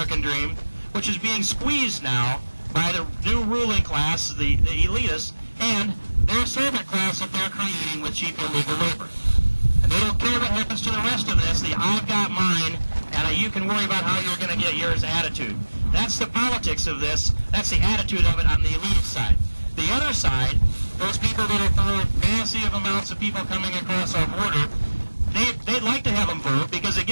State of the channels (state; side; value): inverted; both; correlation -1.00